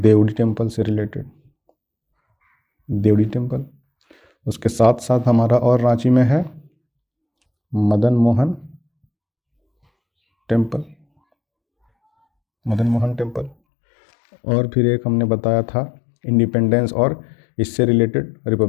टेम्पल से रिलेटेड, देवड़ी टेम्पल। उसके साथ साथ हमारा और रांची में है मदन मोहन टेम्पल, और फिर एक हमने बताया था इंडिपेंडेंस और इससे रिलेटेड,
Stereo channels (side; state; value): right; drops out; at 13.6 s